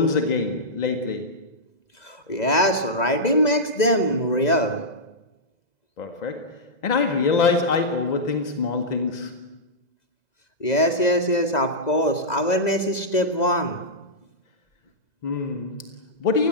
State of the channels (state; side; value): late; right; 2.0 ms